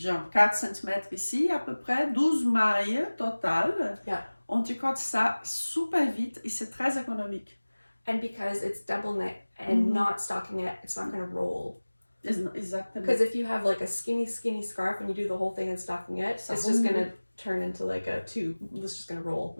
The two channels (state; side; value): inverted; both; correlation -1.00